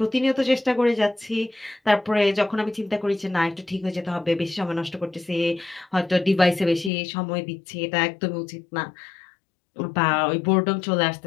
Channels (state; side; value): drops out; right; at 6.9 s